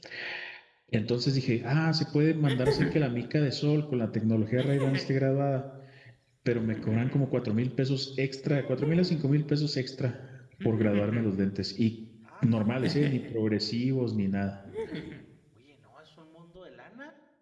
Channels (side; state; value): both; identical; correlation 1.00